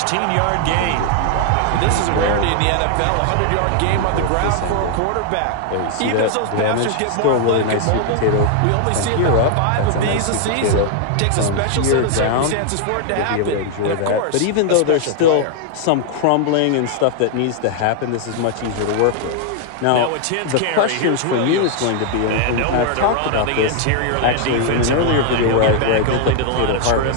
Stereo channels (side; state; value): both; different; correlation 0.00